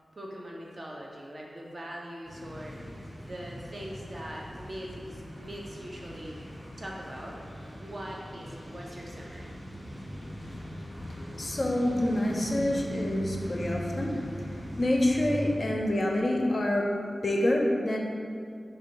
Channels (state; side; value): normal; both; correlation 0.95